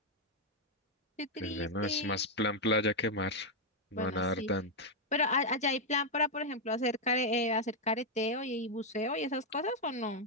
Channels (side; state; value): both; normal; correlation 0.00